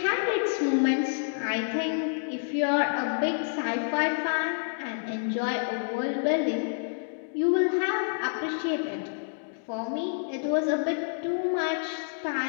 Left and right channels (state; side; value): silent; right; digital silence